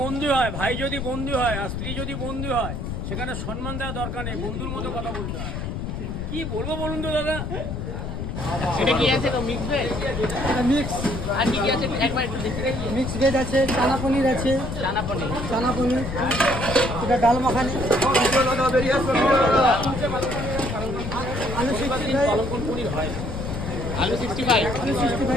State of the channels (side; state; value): left; noise; rumble, 5 dB below the sound